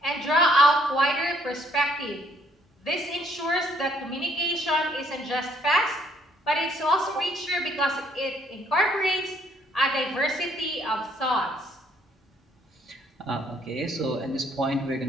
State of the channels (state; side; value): normal; both; correlation 0.66